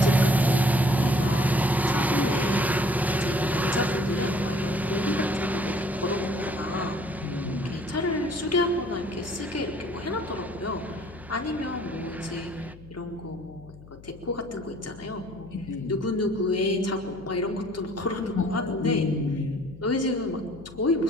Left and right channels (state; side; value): noise; left; hum, 19 dB below the sound